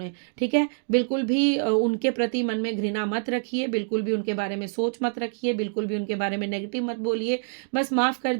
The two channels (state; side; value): silent; left; digital silence